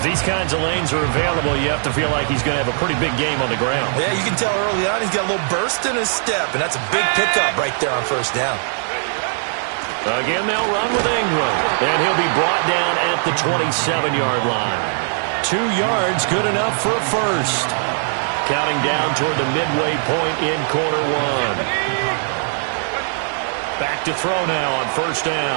these kinds of lanes are available, you have to feel like he's going to have a pretty big game on the ground. Yeah, you can tell early on he's got a little burst in his step, and that's a big pickup right there on first down. Again, they'll run with Ingram, and he'll be brought down at the 27-yard line. 2 yards, good enough for a first. Counting down toward the midway point in quarter one. Back to throw now on first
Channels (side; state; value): left; silent; digital silence